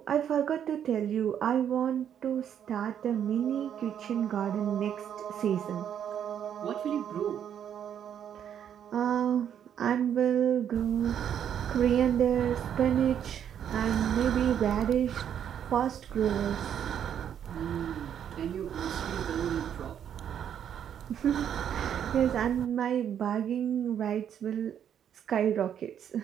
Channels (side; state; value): left; quieter; 9.2 dB